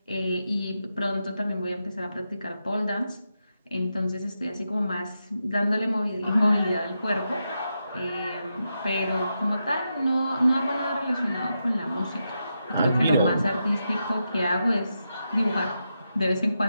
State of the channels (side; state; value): both; inverted; correlation -0.86